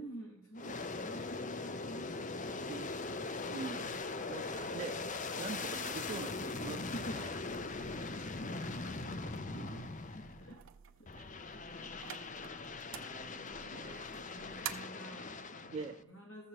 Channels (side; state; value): both; normal; correlation 0.23